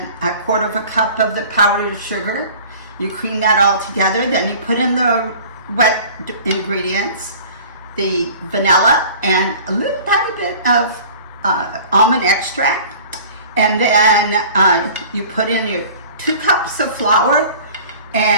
a quarter of a cup of the powdered sugar. You cream that all together, then you put in the wet ingredients, the vanilla, and a little tiny bit of almond extract, and then you put in your 2 cups of flour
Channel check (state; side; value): inverted; both; correlation -0.45